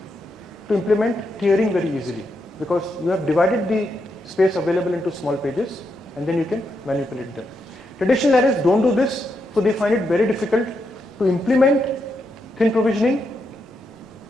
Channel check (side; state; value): both; normal; correlation 0.82